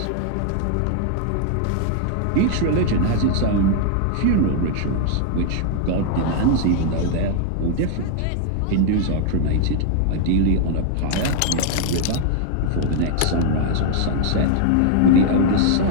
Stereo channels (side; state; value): both; different; correlation 0.00